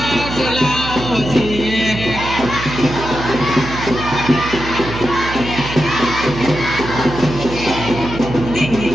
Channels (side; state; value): right; noise; hum, 9 dB below the sound